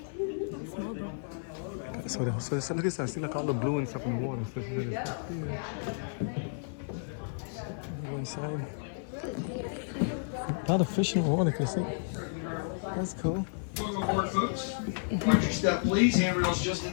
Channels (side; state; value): right; silent; 57 dB below the other